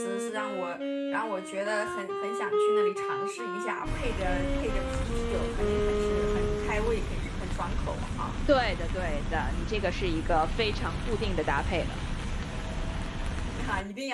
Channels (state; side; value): identical; both; correlation 1.00